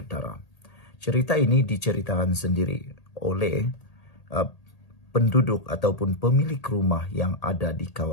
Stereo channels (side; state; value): right; late; 1.8 ms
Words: Cerita ini diceritakan sendiri oleh penduduk ataupun pemilik rumah yang ada di